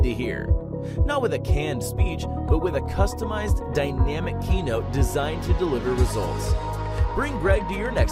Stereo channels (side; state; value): both; identical; correlation 1.00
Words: to hear. Not with a canned speech, but with a customized, dynamic keynote designed to deliver results. Bring Greg to your